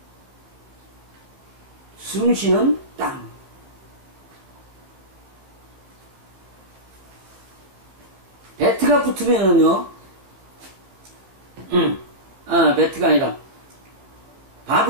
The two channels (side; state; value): left; late; 15 ms